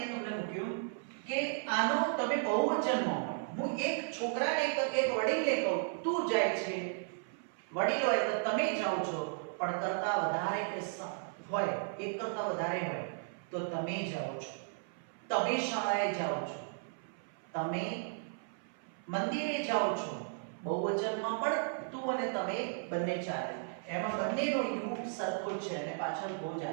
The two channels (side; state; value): left; silent; 54 dB below the other